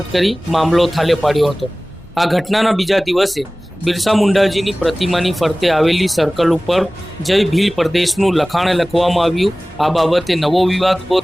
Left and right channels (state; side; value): normal; both; correlation 0.98